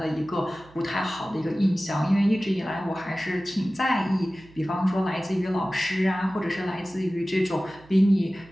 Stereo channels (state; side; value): noise; right; hum, 25 dB below the sound